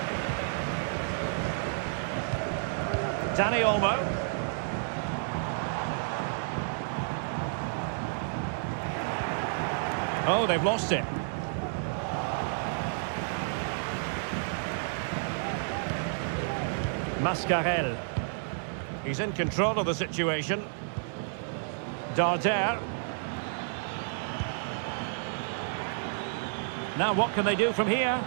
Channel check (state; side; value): silent; left; digital silence